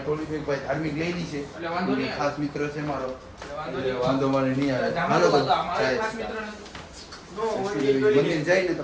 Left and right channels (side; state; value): both; identical; correlation 1.00